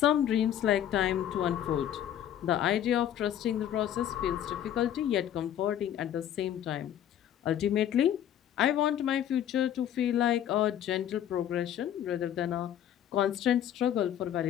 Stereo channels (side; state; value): right; quieter; 10.6 dB